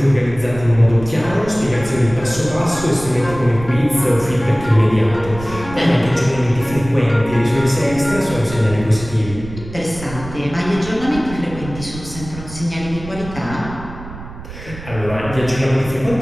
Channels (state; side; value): noise; right; rumble, 13 dB below the sound